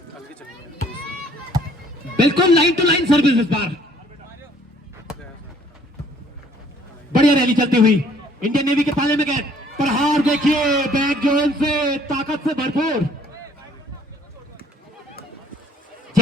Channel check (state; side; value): normal; both; correlation 0.60